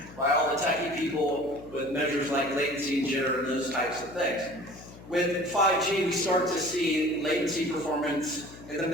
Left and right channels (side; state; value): left; noise; hum, 18 dB below the sound